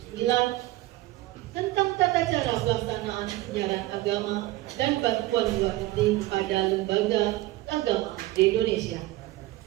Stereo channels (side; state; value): left; quieter; 17.5 dB